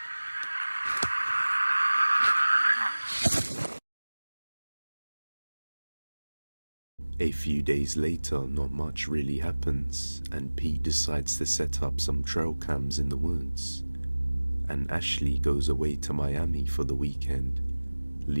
A few days later, not much really happens, and Pete decides to set up some trail cams in the woods. And Ashley goes away to Miami for the weekend,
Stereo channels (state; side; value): inverted; both; correlation -1.00